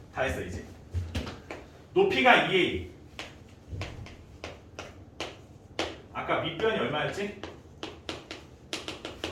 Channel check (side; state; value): both; identical; correlation 1.00